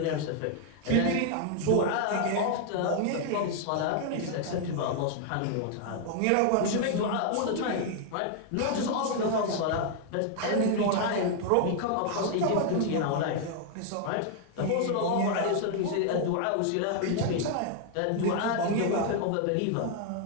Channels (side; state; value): both; different; correlation 0.00